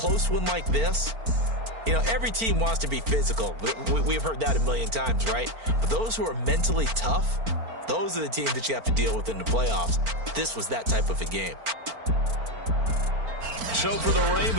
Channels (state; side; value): late; left; 4.4 ms